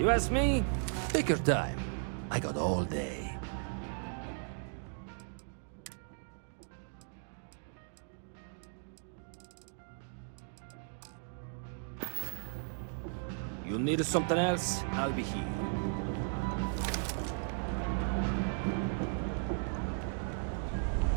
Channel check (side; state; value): left; silent; 54 dB below the other